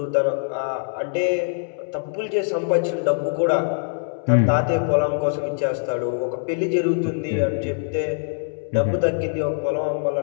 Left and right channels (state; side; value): silent; right; 63 dB below the other